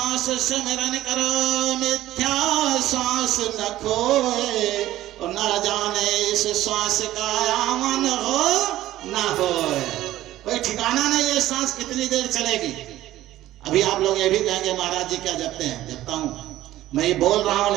सिमरन करो, मिथ्या सांस न खोए, और न जाने इस सांस का आवन हो ना हो। कोई ठिकाना नहीं है सांस कितनी देर चलेगी। अभी आप लोग ये भी कहेंगे महाराज जी क्या जपते हैं? जपता हूं, मैं ये बोल रहा हूं,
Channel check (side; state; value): left; quieter; 14.6 dB